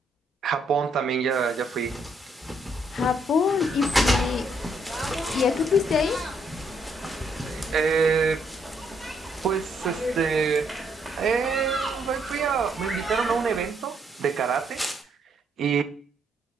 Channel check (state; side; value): normal; both; correlation 0.72